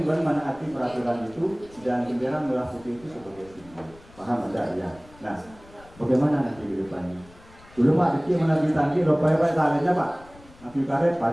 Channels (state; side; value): noise; left; rumble, 24 dB below the sound